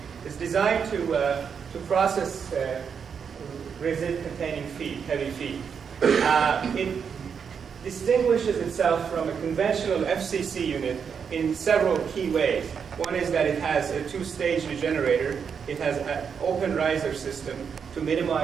It's designed to process resid-containing feed, heavy feed. distinguishes itself from a conventional FCC unit in several key ways. One is that it has a two-stage regenerator. It has an open riser system to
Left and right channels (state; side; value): quieter; left; 6.7 dB